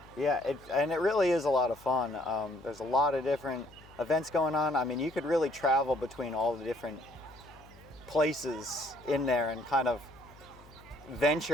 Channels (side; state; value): left; noise; hum, 23 dB below the sound